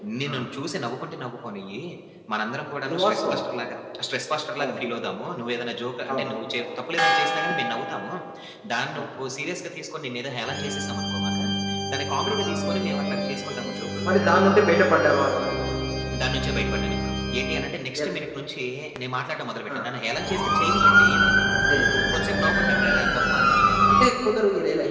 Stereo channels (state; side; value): identical; both; correlation 1.00